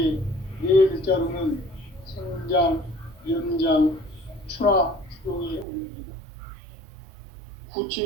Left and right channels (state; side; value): drops out; left; at 5.7 s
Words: 네 글자로는 생장, 연장, 추나 추동에 올립니다.